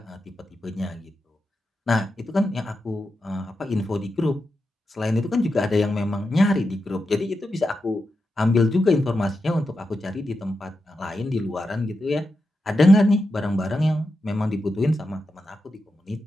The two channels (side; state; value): both; normal; correlation 0.88